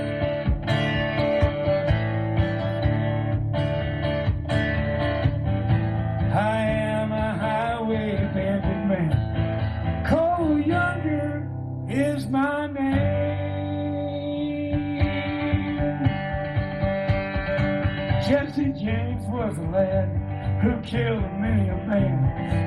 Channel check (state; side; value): identical; both; correlation 1.00